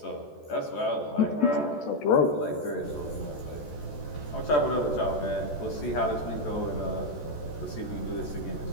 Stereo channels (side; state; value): right; late; 14 ms